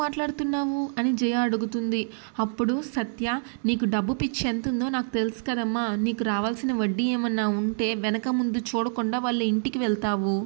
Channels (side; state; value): left; silent; 61 dB below the other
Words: అని జయ అడుగుతుంది. అప్పుడు సత్య, నీకు డబ్బు పిచ్చి ఎంత ఉందో నాకు తెలుసు కదమ్మా, నీకు రావాల్సిన వడ్డీ ఏమన్నా ఉంటే వెనక ముందు చూడకుండా వాళ్ళ ఇంటికి వెళ్తావు?